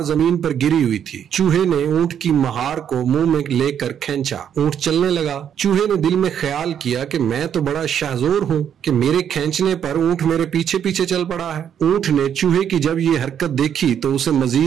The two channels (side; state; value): left; quieter; 9.0 dB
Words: जमीन पर गिरी हुई थी। चूहे ने ऊंट की महार को मुंह में लेकर खींचा। ऊंट चलने लगा। चूहे ने दिल में ख्याल किया कि मैं तो बड़ा शाहजोर हूँ कि मेरे खींचने पर ऊंट मेरे पीछे पीछे चल पड़ा है। ऊंट ने चूहे की जब ये हरकत देखी तो उसे